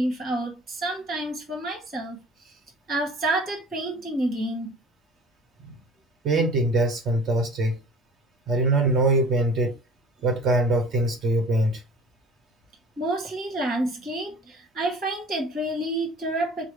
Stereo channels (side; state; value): both; normal; correlation 0.44